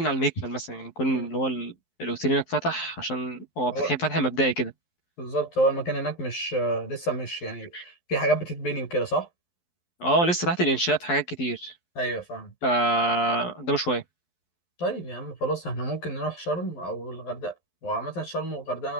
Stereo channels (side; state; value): right; late; 11 ms